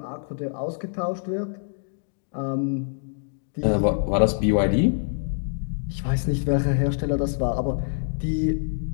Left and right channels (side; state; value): right; silent; digital silence